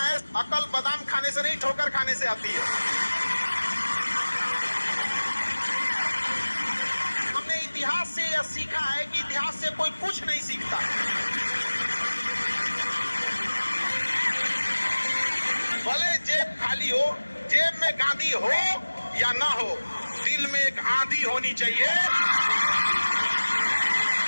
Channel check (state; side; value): inverted; both; correlation -1.00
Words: अकल बादाम खाने से नहीं, ठोकर खाने से आती है। हमने इतिहास से यह सीखा है कि इतिहास से कोई कुछ नहीं सीखता। भले जेब खाली हो, जेब में गांधी हो या ना हो, दिल में एक आंधी होनी चाहिए।